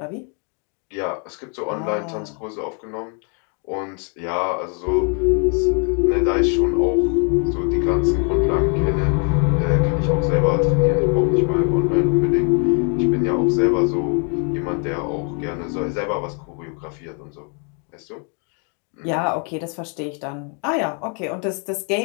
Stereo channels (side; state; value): right; quieter; 39.3 dB